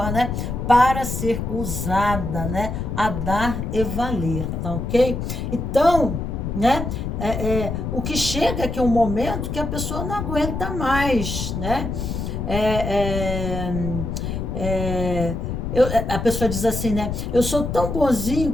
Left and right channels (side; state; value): left; noise; rumble, 4 dB below the sound